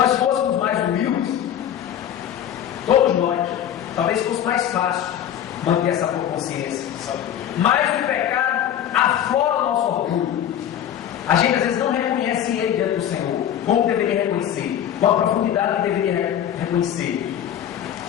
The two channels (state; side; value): quieter; right; 10.3 dB